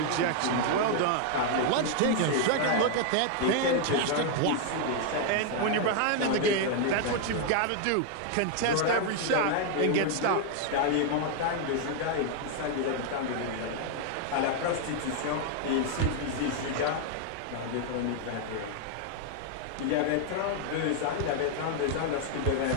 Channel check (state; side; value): different; both; correlation 0.00